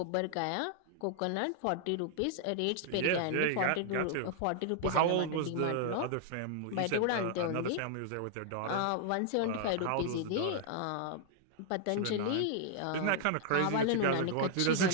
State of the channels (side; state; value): both; different; correlation 0.00